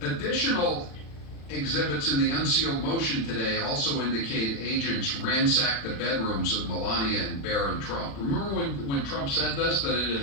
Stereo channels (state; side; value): late; right; 36 ms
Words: additional Exhibits in the unsealed motion today also indicate agents ransacked the bedrooms of Melania and Barron Trump. Remember when Trump said this, that it had